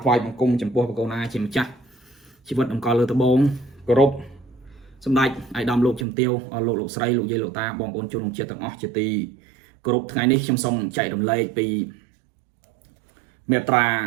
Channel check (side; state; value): left; drops out; at 6.1 s